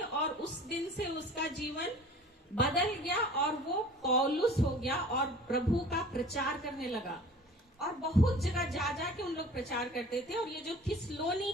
उस दिन से उसका जीवन बदल गया और वो पौलुस हो गया और प्रभु का प्रचार करने लगा। और बहुत जगह जा जा के उन लोग प्रचार करते थे। और ये जो थिस्सलुनी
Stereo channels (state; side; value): normal; both; correlation 0.45